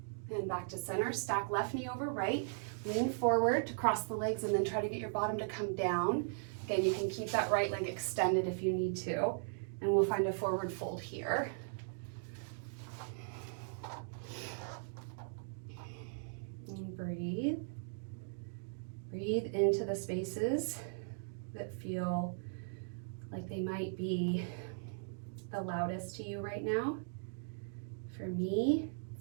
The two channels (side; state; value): left; silent; digital silence